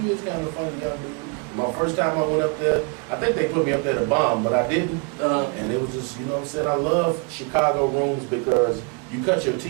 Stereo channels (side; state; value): left; quieter; 31.8 dB